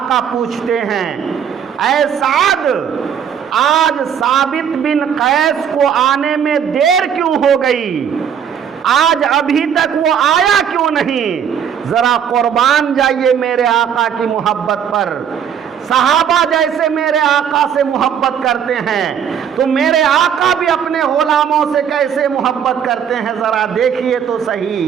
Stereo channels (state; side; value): quieter; left; 8.2 dB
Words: پوچھتے ہیں اے سعد، آج ثابت بن قیس کو آنے میں دیر کیوں ہو گئی؟ آج ابھی تک وہ آیا کیوں نہیں؟ ذرا قربان جائیے میرے آقا کی محبت پر۔ صحابہ جیسے میرے آقا سے محبت کرتے ہیں تو میرے آقا بھی اپنے غلاموں سے کیسے محبت کرتے ہیں، ذرا دیکھیے تو